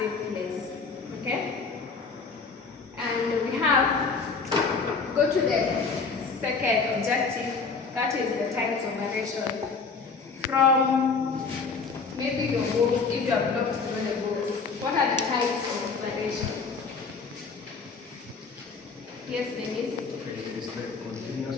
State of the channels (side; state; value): right; quieter; 4.8 dB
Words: place. Okay? And we have, go to the second objective, that is the types of variation. From maybe your books, if you have looked through the books, what are the types of variation? Yes, Denise? Okay, is the continuous